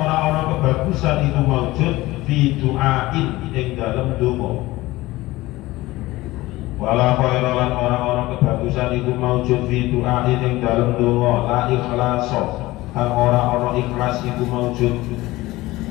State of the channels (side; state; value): right; quieter; 18.7 dB